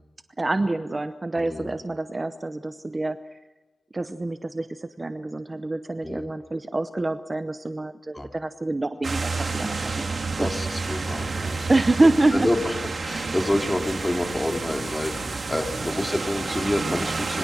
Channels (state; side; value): normal; both; correlation 0.97